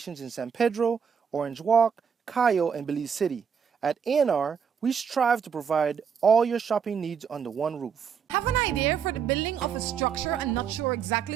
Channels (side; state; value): left; quieter; 7.0 dB